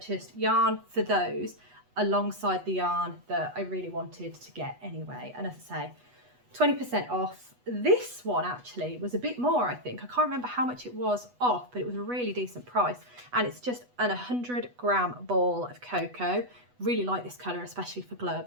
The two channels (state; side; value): late; left; 8.1 ms